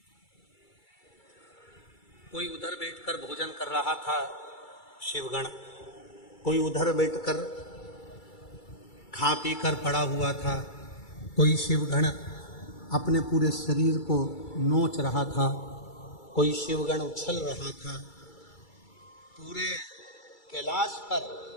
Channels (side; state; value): right; late; 2.3 ms